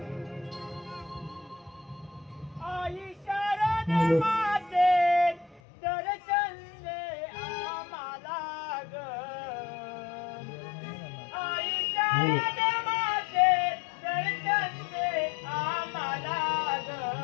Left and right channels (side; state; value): right; drops out; at 5.6 s